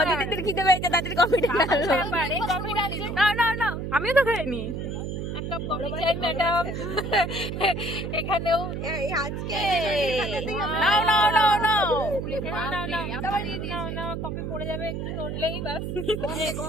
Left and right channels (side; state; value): right; noise; hum, 4 dB below the sound